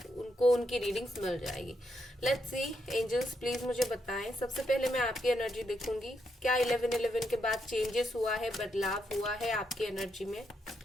उनको उनकी रीडिंग्स मिल जाएगी। Let's see. एंजल्स प्लीज मुझे बताएं। सबसे पहले मैं आपकी एनर्जी देखूंगी, क्या 11/11 के बाद चेंजेस हुआ है, बदलाव हुआ है आपकी एनर्जी में।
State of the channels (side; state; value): both; normal; correlation 0.80